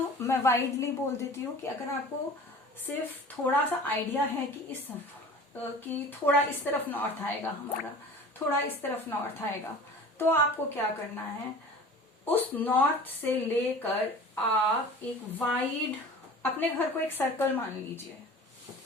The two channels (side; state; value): both; normal; correlation 0.41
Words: मैं वाइडली बोल देती हूँ कि अगर आपको सिर्फ थोड़ा सा आइडिया है कि थोड़ा इस तरफ नॉर्थ आएगा हमारा, थोड़ा इस तरफ नॉर्थ आएगा, तो आपको क्या करना है, उस नॉर्थ से लेकर आप एक वाइड अपने घर को एक सर्कल मान लीजिए,